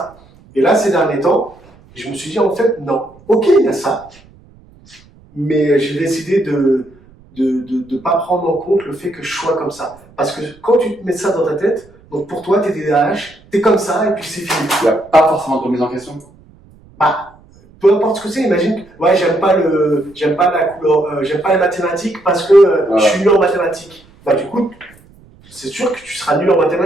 Et là, ces derniers temps, je me suis dit en fait, non. Ok, il y a ça. Mais j'ai décidé de pas prendre en compte le fait que je sois comme ça. Parce que quand tu te mets ça dans ta tête, donc pour toi, t'es TDAH, t'es comme ça et puis c'est fini. Il n'y a pas forcément de remise en question. Peu importe ce que c'est, imagine, ouais, j'aime pas la couleur, j'aime pas les mathématiques parce que je suis nul en mathématiques. Du coup, c'est sûr que tu seras nul en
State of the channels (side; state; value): right; noise; rumble, 27 dB below the sound